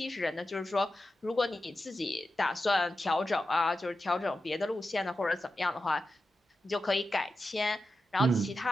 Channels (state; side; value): normal; both; correlation 0.91